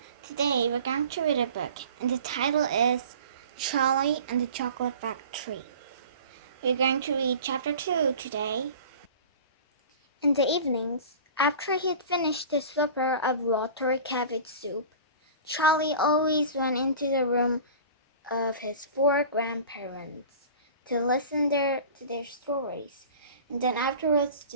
Today we're going to read a book, and the title is Charlie and the Chocolate Factory. We're going to read chapter 2 today. In the evenings, after he had finished his supper of watery cabbage soup, Charlie always went into the room of his 4 grandparents to listen to their stories, and then afterwards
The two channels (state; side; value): inverted; both; correlation -0.39